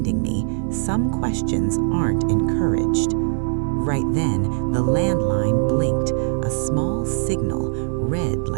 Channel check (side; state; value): left; silent; digital silence